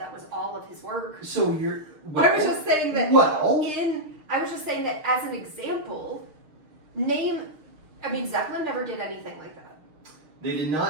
was all of his work. So you're. I was just saying that. I was just saying that as an example. Zeppelin never did anything like that. They did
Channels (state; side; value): late; left; 6.5 ms